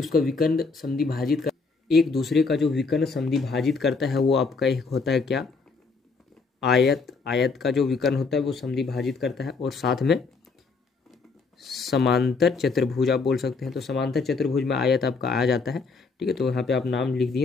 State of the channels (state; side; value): quieter; right; 4.4 dB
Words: उसका विकर्ण समद्वि भाजित कर, एक दूसरे का जो विकर्ण समद्वि भाजित करता है वो आपका एक होता है क्या, आयत। आयत का जो विकर्ण होता है वो समद्वि भाजित करता है, और साथ में समांतर चतुर्भुज आप बोल सकते हैं। तो समांतर चतुर्भुज में आयत आपका आ जाता है। ठीक है, तो यहाँ पे आप नाम लिख